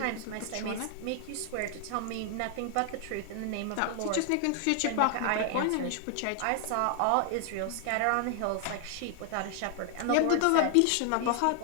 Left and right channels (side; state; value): both; different; correlation 0.00